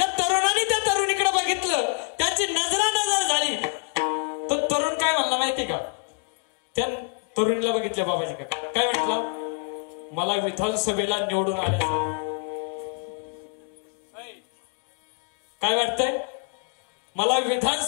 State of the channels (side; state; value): right; quieter; 38.5 dB